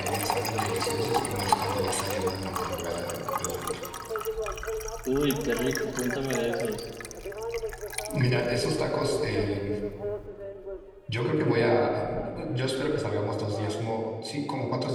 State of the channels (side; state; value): both; identical; correlation 1.00